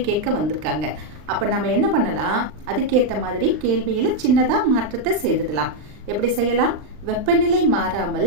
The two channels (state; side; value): late; left; 39 ms